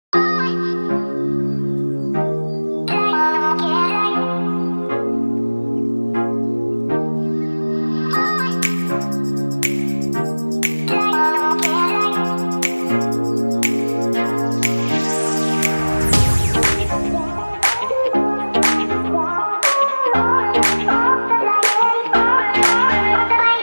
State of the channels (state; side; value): inverted; both; correlation -1.00